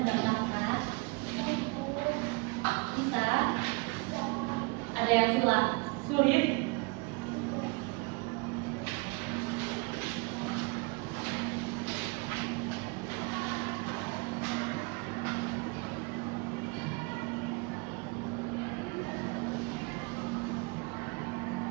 Mbak Marta? Bisa? Ada yang sulit?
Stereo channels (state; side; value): quieter; left; 29.5 dB